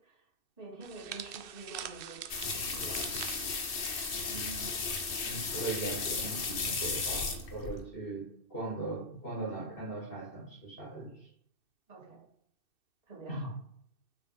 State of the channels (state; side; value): late; right; 2.6 ms